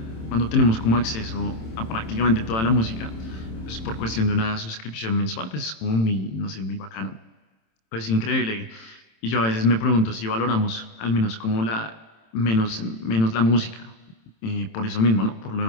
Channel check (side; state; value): right; late; 27 ms